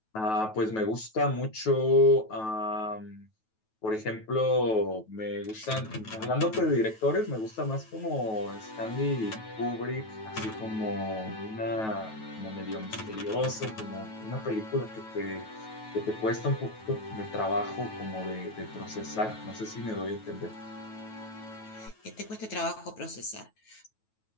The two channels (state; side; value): late; right; 9.2 ms